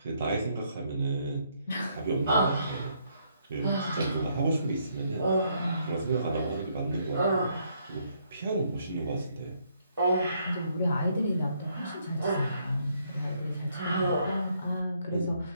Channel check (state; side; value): inverted; both; correlation -0.72